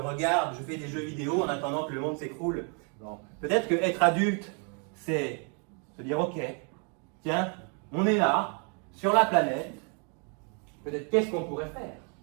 je fais des jeux vidéo en attendant que le monde s'écroule. Bon. Peut-être que être adulte, c'est se dire ok, tiens, on est là, sur la planète, peut-être qu'est-ce qu'on pourrait faire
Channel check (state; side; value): quieter; left; 38.3 dB